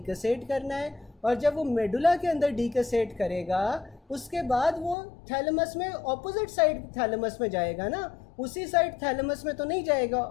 करना है, और जब वो मेडुला के अंदर डीकसेट करेगा उसके बाद वो थैलेमस में ऑपोजिट साइड थैलेमस में जाएगा ना, उसी साइड थैलेमस में तो नहीं जाएगा,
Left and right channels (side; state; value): right; drops out; at 5.0 s